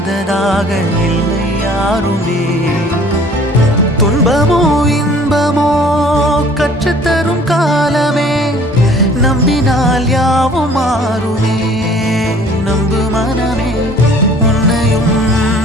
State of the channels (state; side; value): normal; both; correlation 0.53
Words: இல்லை யாருமே. துன்பமோ இன்பமோ கற்றுத்தரும் காலமே, நம்பினால் யாவும் மாறுமே. நம்பு மனமே, உன்னையும்